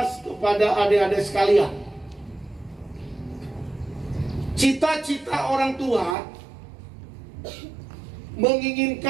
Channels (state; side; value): drops out; left; at 6.2 s